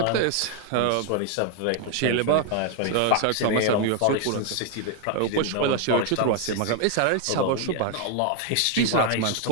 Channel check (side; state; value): both; different; correlation 0.00